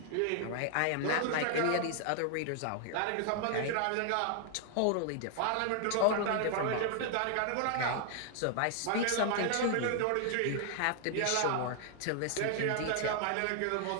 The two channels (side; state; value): both; different; correlation 0.00